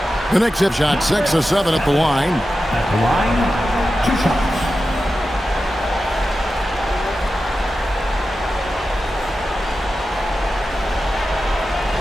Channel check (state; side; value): normal; both; correlation 0.92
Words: The Knicks have shot 6 of 7 at the line. At the line, 2 shots.